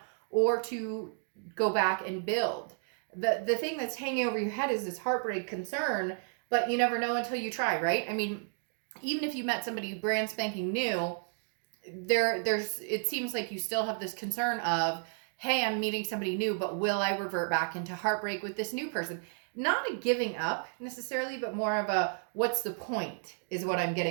or to go back and build. The thing that's hanging over your head is this heartbreak concern, but you never know until you try, right? I mean, even if you met somebody brand spanking new, it seems like you still have this concern of, hey, I'm meeting somebody new, but will I revert back into heartbreak with this new person? Not a giving up necessarily, but more of a what's the point is what I'm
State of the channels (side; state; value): left; silent; 56 dB below the other